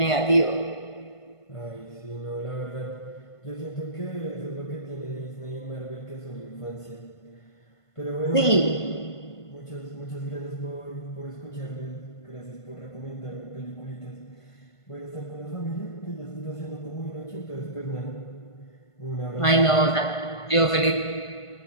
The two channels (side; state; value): right; late; 1.5 ms